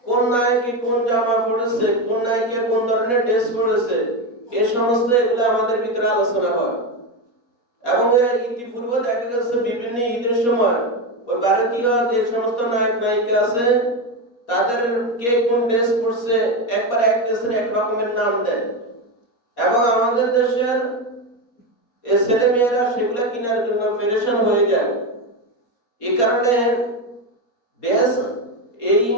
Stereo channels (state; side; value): late; right; 4.2 ms